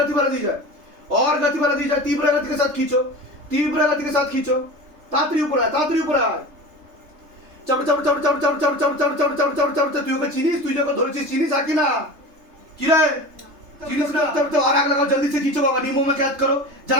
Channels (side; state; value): left; late; 3.3 ms